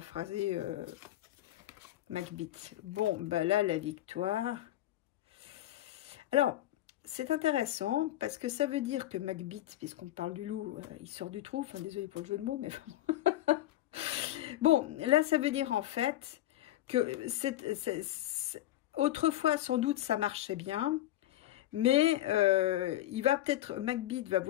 Macbeth. Bon, bah là, la victoire. Alors, c'est intéressant parce que ça veut dire que Macbeth, puisqu'on parle du loup, il sort du trou. Enfin, désolé pour le jeu de mots, mais bon. Bon, là, ça veut dire en fait que autrefois, sans doute, ça marchait bien. Mais Macbeth va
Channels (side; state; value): right; quieter; 14.3 dB